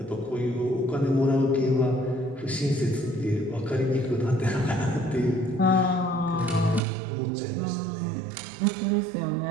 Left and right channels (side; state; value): left; drops out; at 6.8 s